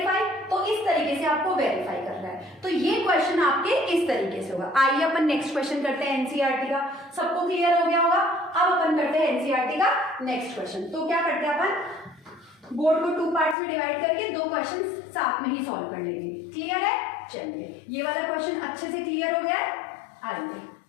तो इस तरीके से आपको वेरीफाई करना है। तो ये क्वेश्चन आपके इस तरीके से होगा। आइए अपन नेक्स्ट क्वेश्चन करते हैं एनसीईआरटी का, सबको क्लियर हो गया होगा। अब अपन करते हैं एनसीईआरटी का नेक्स्ट क्वेश्चन। तो क्या करते हैं अपन बोर्ड को 2 पार्ट्स में डिवाइड करके 2 क्वेश्चन साथ में ही सॉल्व कर लेंगे। क्लियर है, चलिए ये वाला क्वेश्चन अच्छे से क्लियर हो गया है। आइए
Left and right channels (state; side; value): drops out; right; at 13.6 s